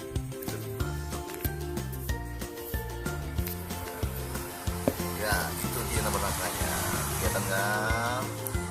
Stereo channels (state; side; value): identical; both; correlation 1.00